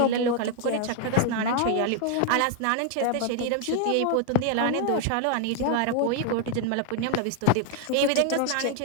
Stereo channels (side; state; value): both; different; correlation 0.00